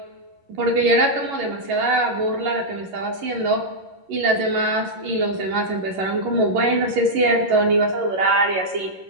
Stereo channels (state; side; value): late; left; 11 ms